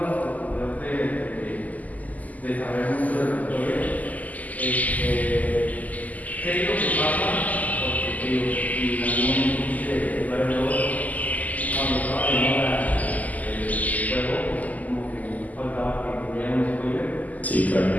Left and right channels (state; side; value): late; right; 0.078 ms